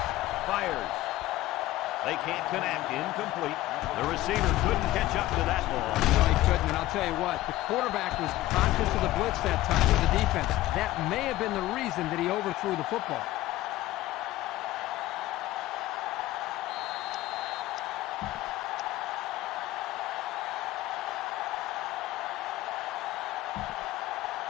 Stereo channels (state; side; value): quieter; right; 16.3 dB